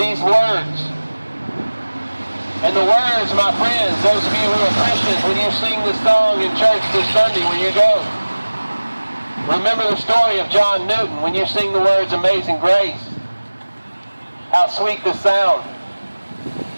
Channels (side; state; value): both; inverted; correlation -1.00